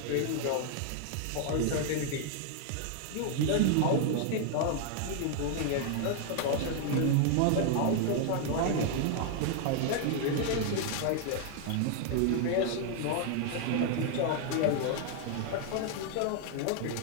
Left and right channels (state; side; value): different; both; correlation 0.00